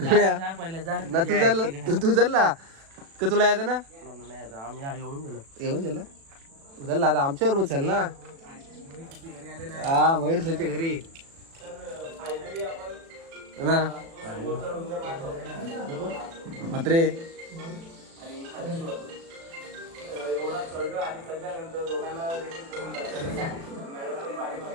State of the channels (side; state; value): left; late; 36 ms